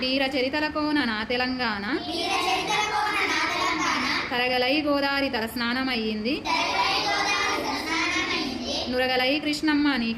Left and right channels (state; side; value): identical; both; correlation 1.00